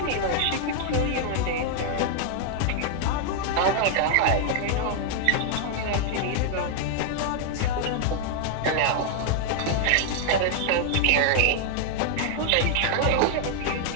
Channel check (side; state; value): both; different; correlation 0.00